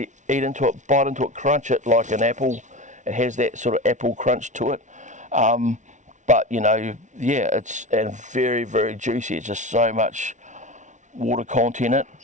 eat into it, bite into it, crunch it like an apple. It has that sort of apple crunch to it. But, you know, yeah, it's and very, very juicy. It's just so much water content in it,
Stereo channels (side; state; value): left; late; 0.36 ms